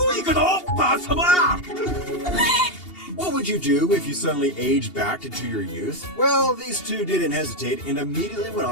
行くぞばあさま。 What would you do if you suddenly aged back into your youth? Well, these two didn't hesitate and immediately went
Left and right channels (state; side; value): late; right; 2.8 ms